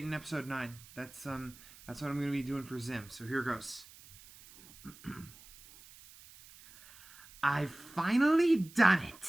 and episode 9. That's what I'm gonna be doing for Zim. So here goes. I've finally done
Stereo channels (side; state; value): right; noise; hiss, 21 dB below the sound